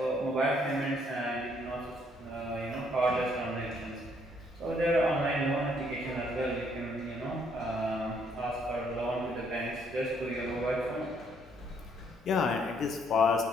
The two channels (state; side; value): normal; both; correlation 0.68